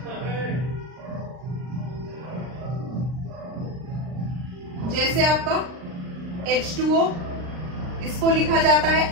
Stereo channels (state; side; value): late; left; 39 ms